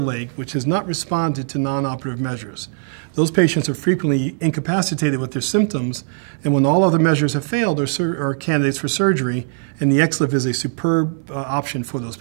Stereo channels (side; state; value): left; silent; 61 dB below the other